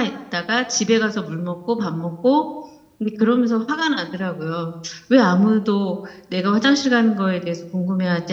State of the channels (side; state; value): both; identical; correlation 1.00